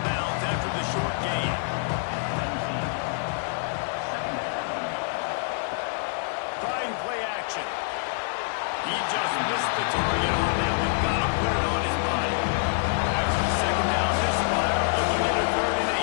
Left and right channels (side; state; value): right; silent; 60 dB below the other